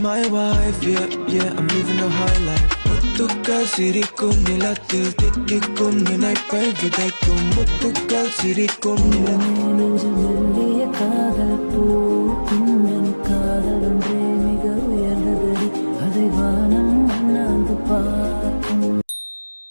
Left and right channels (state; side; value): inverted; both; correlation -1.00